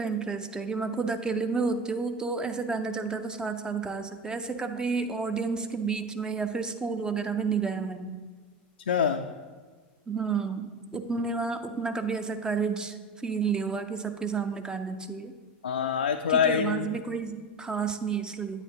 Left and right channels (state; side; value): normal; both; correlation 0.29